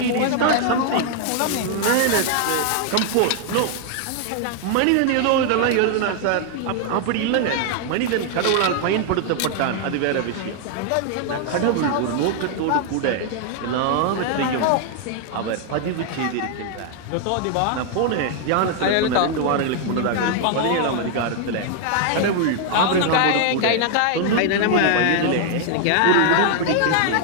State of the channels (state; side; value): different; both; correlation 0.00